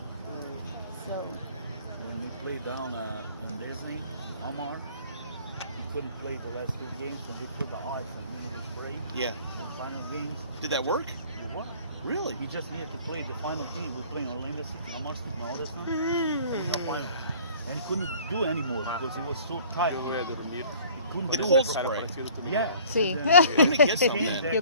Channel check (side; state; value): both; inverted; correlation -0.51